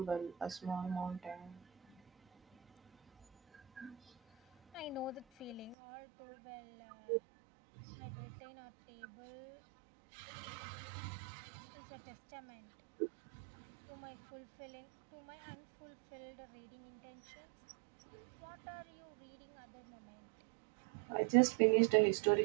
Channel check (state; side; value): drops out; left; at 5.8 s